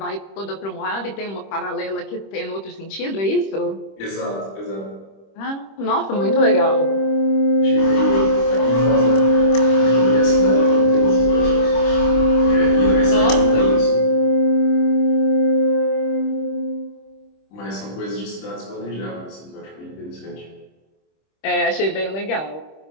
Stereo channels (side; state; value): right; late; 25 ms